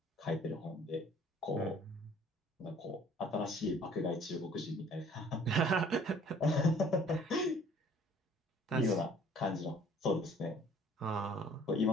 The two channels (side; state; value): both; normal; correlation 0.55